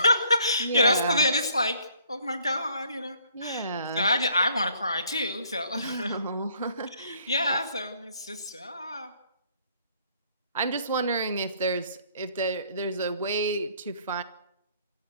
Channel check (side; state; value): both; inverted; correlation -0.62